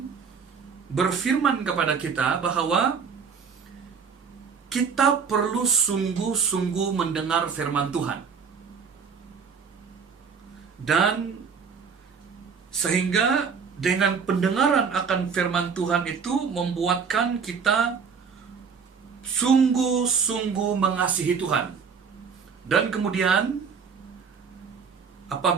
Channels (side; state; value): left; quieter; 6.0 dB